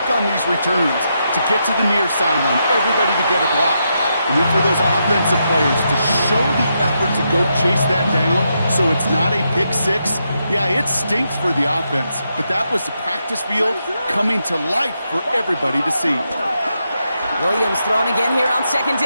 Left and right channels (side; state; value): both; inverted; correlation -0.82